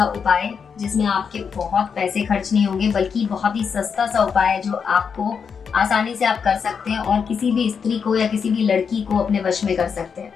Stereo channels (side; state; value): right; quieter; 6.3 dB